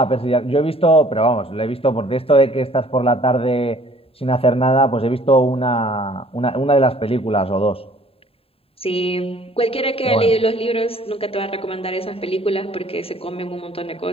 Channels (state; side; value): late; right; 0.27 ms